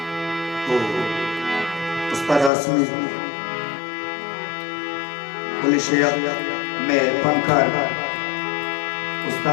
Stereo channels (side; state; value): right; drops out; at 2.5 s